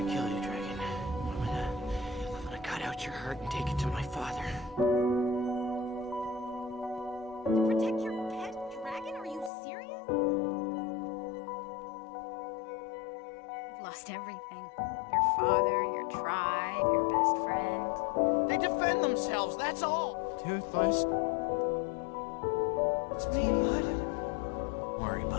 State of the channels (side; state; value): right; drops out; at 9.5 s